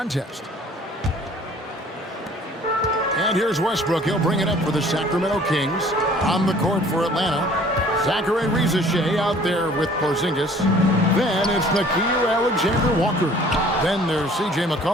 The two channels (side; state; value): both; normal; correlation 0.53